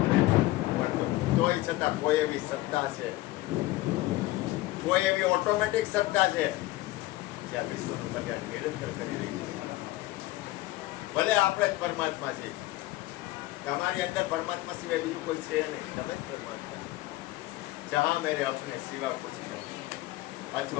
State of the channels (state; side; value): quieter; right; 18.0 dB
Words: તોય છતાં કોઈ એવી સત્તા છે, કોઈ એવી ઓટોમેટિક સત્તા છે જ્યાં વિશ્વનું કલ્યાણ નિરંતર કરી રહી છે. ભલે આપણે જ પરમાત્મા છે. તમારી અંદર પરમાત્મા સિવાય બીજું કોઈ છે નહીં. તમે જ પરમાત્મા છો. જહાં મેરે અપને સિવા કુછ નહીં.